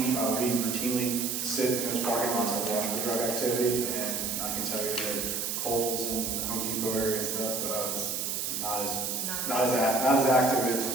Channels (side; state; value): right; noise; hiss, 2 dB below the sound